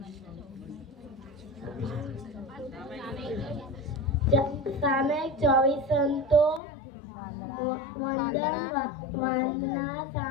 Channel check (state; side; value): drops out; right; at 6.6 s